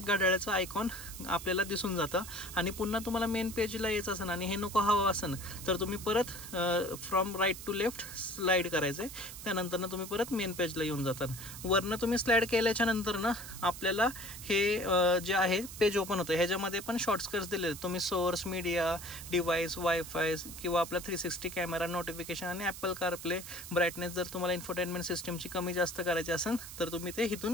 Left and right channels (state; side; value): noise; right; hiss, 12 dB below the sound